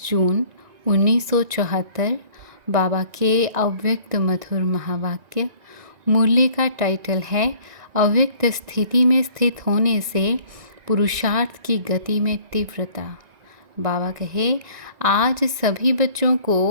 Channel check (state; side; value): late; left; 1.9 ms